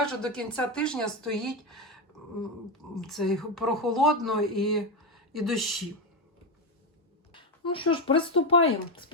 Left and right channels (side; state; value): both; normal; correlation 0.12